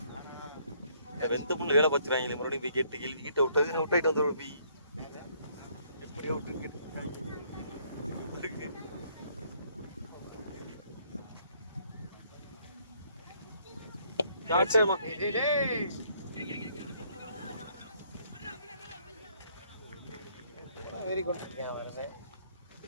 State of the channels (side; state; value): both; inverted; correlation -0.66